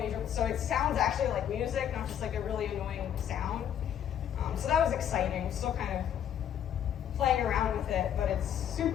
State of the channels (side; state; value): right; quieter; 9.6 dB